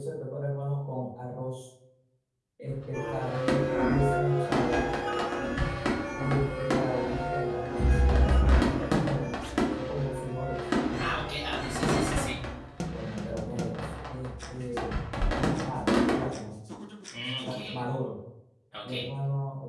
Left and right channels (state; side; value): identical; both; correlation 1.00